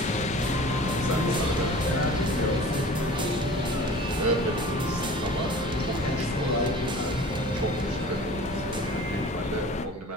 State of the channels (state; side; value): normal; both; correlation 0.43